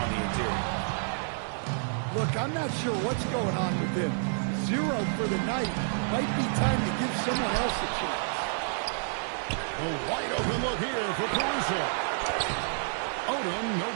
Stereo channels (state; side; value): silent; left; digital silence